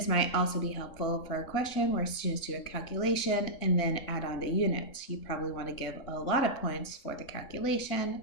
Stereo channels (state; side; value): late; right; 3.7 ms